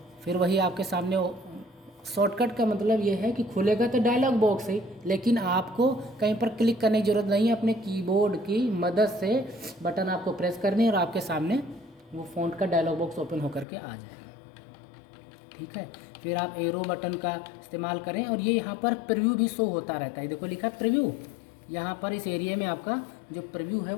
फिर वही आपके सामने शॉर्टकट का मतलब ये है कि खुलेगा तो डायलॉग बॉक्स है, लेकिन आपको कहीं पर क्लिक करने की ज़रूरत नहीं है, अपने कीबोर्ड की मदद से बटन आपको प्रेस करनी है और आपके सामने वो फ़ॉन्ट का डायलॉग बॉक्स ओपन होकर के आ जाएगा, ठीक है। फिर आप एरो बटन का इस्तेमाल करें और ये यहाँ पर प्रीव्यू भी शो होता रहता है, देखो लिखा है प्रीव्यू, यहाँ पर इस एरिया में आपका जो प्रीव्यू है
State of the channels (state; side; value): drops out; right; at 13.7 s